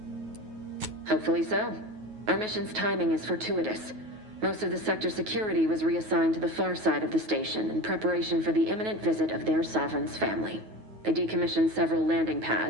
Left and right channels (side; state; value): left; late; 9.3 ms